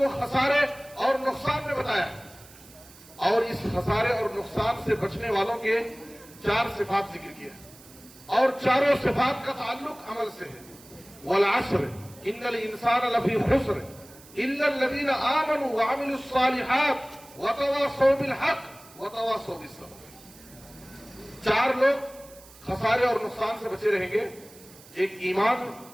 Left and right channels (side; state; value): right; noise; hiss, 22 dB below the sound